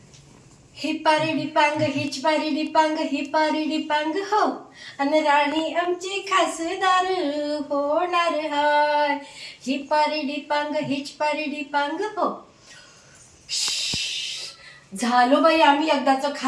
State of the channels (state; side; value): identical; both; correlation 1.00